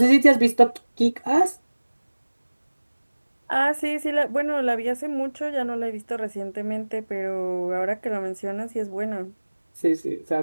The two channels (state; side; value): inverted; both; correlation -1.00